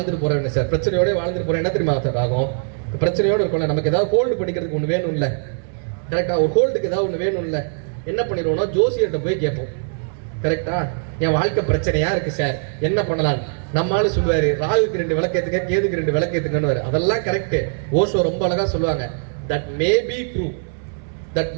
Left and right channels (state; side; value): silent; left; 65 dB below the other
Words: போறேன் சார், பிரச்சனையோட வாழ்ந்துட்டு போறேன், என்ன தெரியுமா சார் ஆகும்? பிரச்சனையோட இருக்கும்ல, நமக்கு ஏதாவது ஹோல்டு பண்ணிக்கிறதுக்கு ஒன்று வேணும் இல்ல, கரெக்டா? ஒரு ஹோல்டுக்கு ஏதாவது ஒன்று வேணும் இல்ல, என்ன பண்ணிடுவோம்னா ஜோசியர்கிட்ட போய் கேட்போம். கரெக்டா? என் வாழ்க்கை பிரச்சனையா இருக்கு சார், என்ன பண்ணலாம்? நம்மளால சொல்லுவாரு, ராகுக்கு 2 விளக்கேத்துங்க, கேதுக்கு 2 விளக்கேத்துங்கன்னு. அதெல்லாம் கரெக்ட். ஓஷோ ரொம்ப அழகா சொல்லுவாங்க, that may be true, that